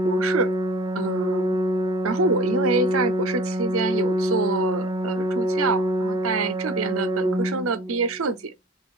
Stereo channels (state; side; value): normal; both; correlation 0.43